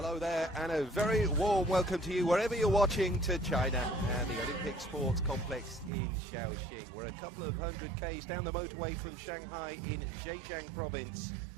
there and a very warm welcome to you wherever you're watching to China and the Olympic Sports Complex in Shaoxing. We're a couple of 100 k's down the motorway from Shanghai in Zhejiang province,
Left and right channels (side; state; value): left; drops out; at 5.9 s